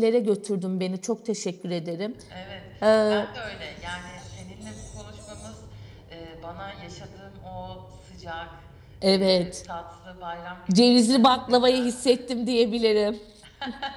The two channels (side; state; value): both; identical; correlation 1.00